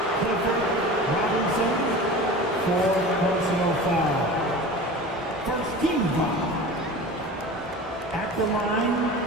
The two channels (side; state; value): both; normal; correlation 0.35